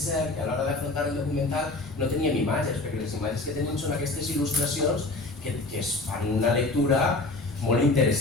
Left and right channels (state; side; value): quieter; right; 3.1 dB